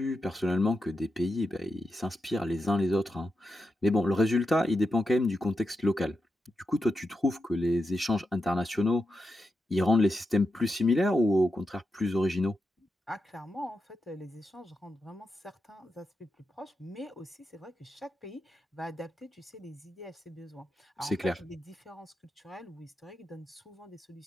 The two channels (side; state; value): both; normal; correlation 0.87